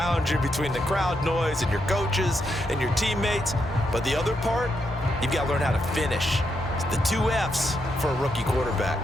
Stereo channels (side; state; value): both; normal; correlation 0.81